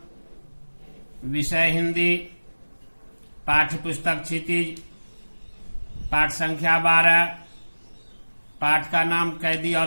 विषय हिंदी, पाठ्य पुस्तक क्षितिज, पाठ संख्या 12, पाठ का नाम कैदी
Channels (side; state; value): both; inverted; correlation -1.00